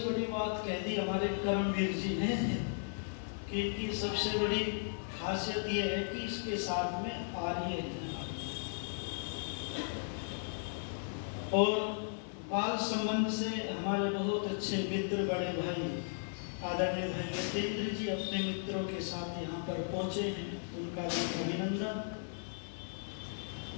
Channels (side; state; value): right; silent; digital silence